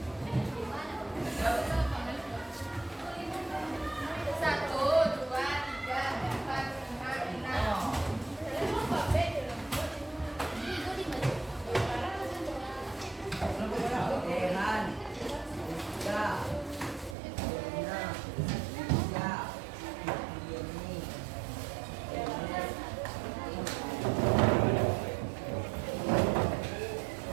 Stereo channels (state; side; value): drops out; left; at 17.2 s